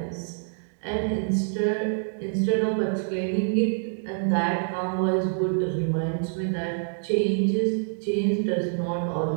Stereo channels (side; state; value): left; silent; digital silence